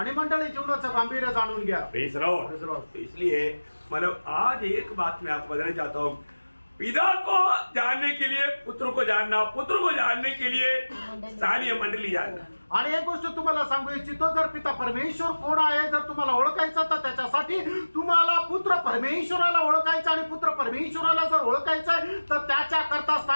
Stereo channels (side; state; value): both; inverted; correlation -1.00